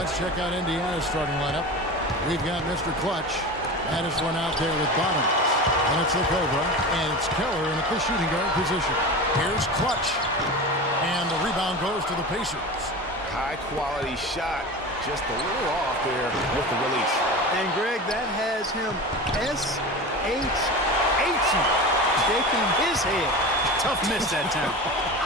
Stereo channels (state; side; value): normal; both; correlation 0.30